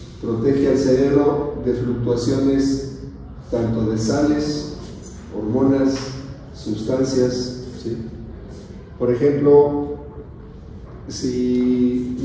protege al cerebro de fluctuaciones tanto de sales, hormonas, sustancias, ¿sí? Por ejemplo, si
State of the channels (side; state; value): both; identical; correlation 1.00